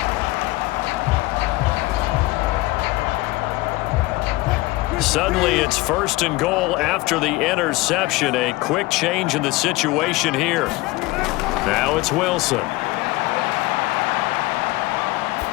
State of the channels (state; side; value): quieter; right; 20.4 dB